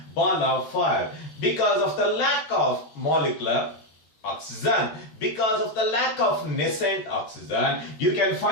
because of the lack of molecular oxygen, because of the lack of nascent oxygen. You can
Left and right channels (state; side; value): late; right; 13 ms